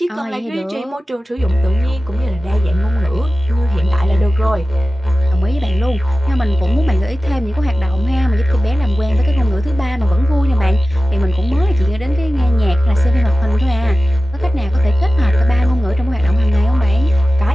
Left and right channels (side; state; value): both; normal; correlation 0.95